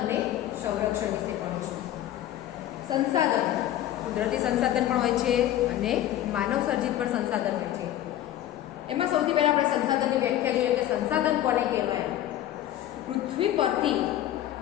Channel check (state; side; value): quieter; right; 12.7 dB